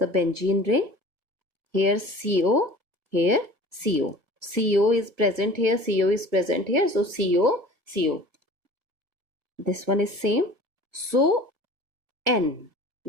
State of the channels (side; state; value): left; late; 1.6 ms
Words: benzene ring, here CO, here CO. CO is present here, CO is present here, so CO, CO. This one is same, so N.